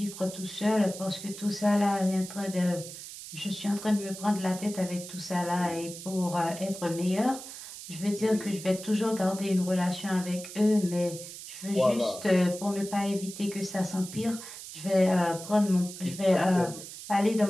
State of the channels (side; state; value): right; noise; hiss, 12 dB below the sound